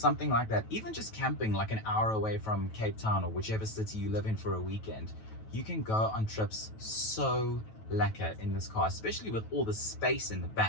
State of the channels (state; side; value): late; right; 9.2 ms